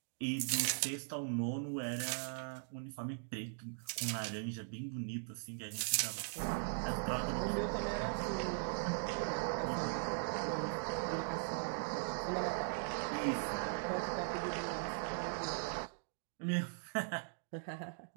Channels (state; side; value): silent; left; digital silence